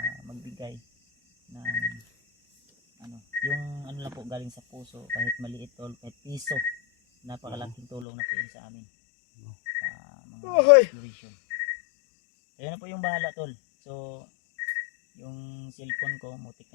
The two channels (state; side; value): drops out; right; at 8.1 s